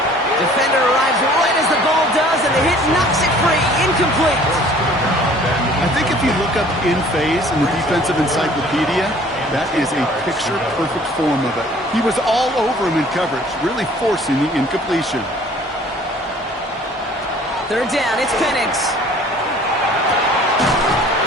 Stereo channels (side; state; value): both; normal; correlation 0.52